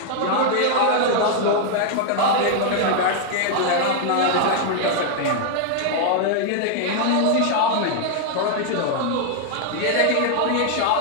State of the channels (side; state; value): both; different; correlation 0.00